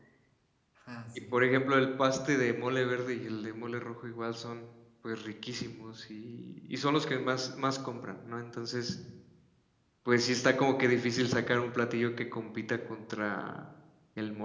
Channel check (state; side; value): identical; both; correlation 1.00